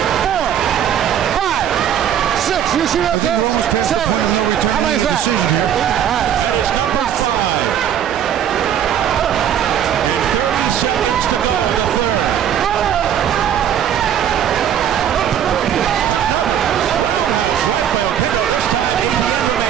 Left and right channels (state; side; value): quieter; left; 9.7 dB